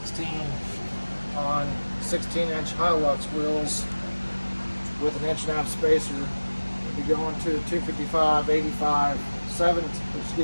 on 16-inch Hilux wheels with an 1.5-inch spacer. We'll be going to 255 85 7,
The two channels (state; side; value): inverted; both; correlation -1.00